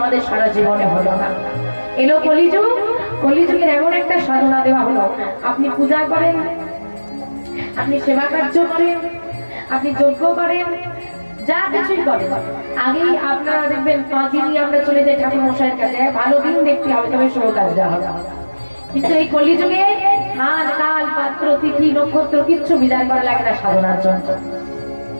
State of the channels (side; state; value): both; inverted; correlation -1.00